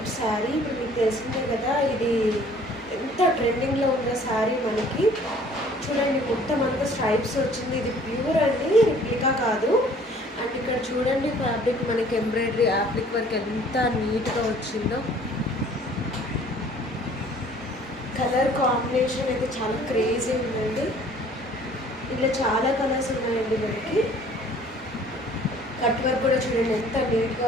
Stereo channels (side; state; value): both; normal; correlation 0.54